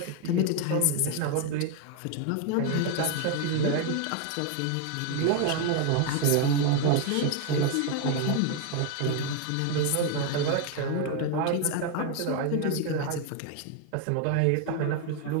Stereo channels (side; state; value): both; different; correlation 0.01